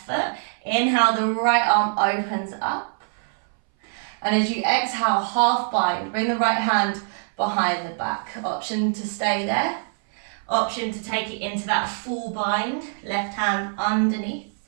foot. Inhale, the right arm opens up. And as you exhale, half bind, bring the right hand behind the back. Option to stay there. Option to take it into that full bind, left hand underneath.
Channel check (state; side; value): silent; left; 60 dB below the other